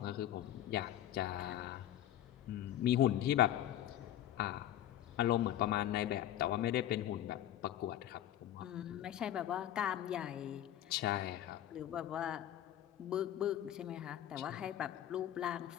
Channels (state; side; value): quieter; right; 12.2 dB